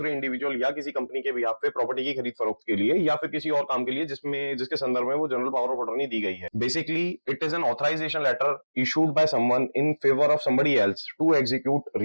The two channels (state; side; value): inverted; both; correlation -1.00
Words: इंडिविजुअल या किसी कंपनी के बिहाफ पे प्रॉपर्टी की खरीद फरोख्त के लिए या फिर किसी और काम के लिए जिसके संदर्भ में वो जनरल पावर ऑफ अटॉर्नी दी गई है। Basically it is an authorisation letter issued by someone in favour of somebody else to execute